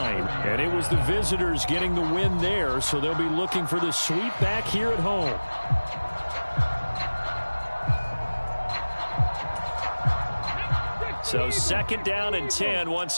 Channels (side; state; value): both; inverted; correlation -1.00